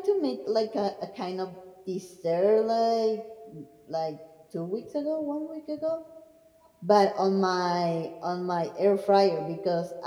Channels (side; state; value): both; identical; correlation 1.00